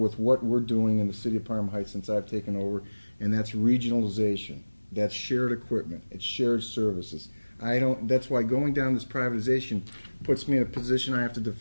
what we're doing in the city of Parma Heights since I've taken over, and that's regionalization. That's shared equipment. It's shared services. That's why going down this privatization puts me in a position I have to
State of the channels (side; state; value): both; inverted; correlation -1.00